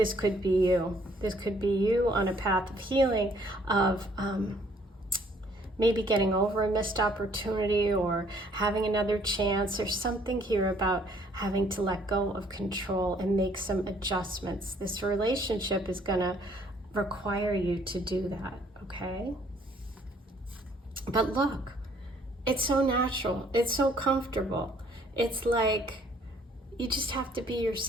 could be you. This could be you on a path of healing, of maybe getting over a missed opportunity or having another chance. There's something here about having to let go of control and make some adjustments. This relationship is going to require you to do that, okay? But look, it's so natural. It's so comfortable. It's like you just have to be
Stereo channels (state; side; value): normal; both; correlation 0.62